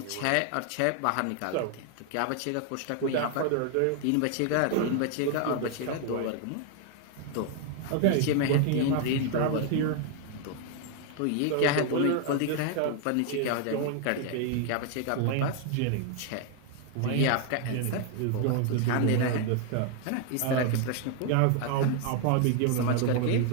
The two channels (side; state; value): both; different; correlation 0.00